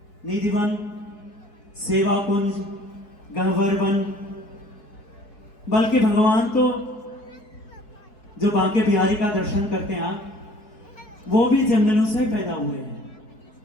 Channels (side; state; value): right; late; 4.7 ms